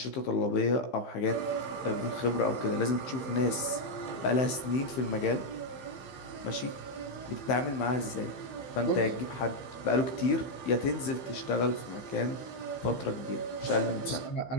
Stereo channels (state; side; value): late; right; 15 ms